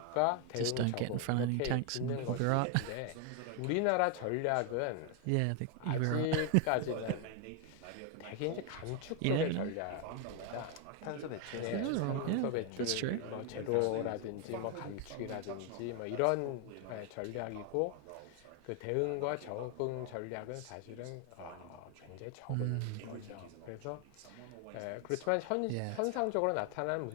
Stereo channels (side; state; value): both; different; correlation 0.01